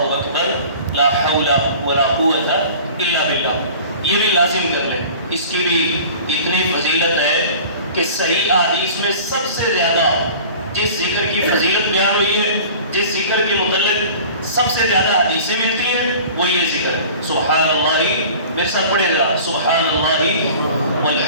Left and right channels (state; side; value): inverted; both; correlation -0.42